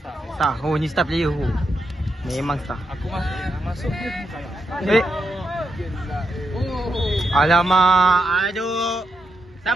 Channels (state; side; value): normal; both; correlation 0.83